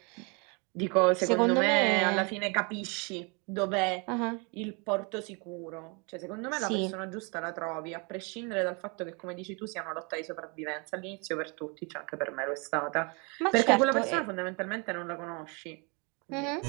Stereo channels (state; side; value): quieter; left; 32.3 dB